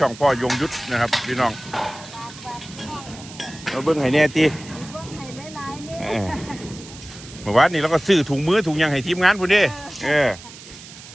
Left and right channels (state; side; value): noise; right; hiss, 17 dB below the sound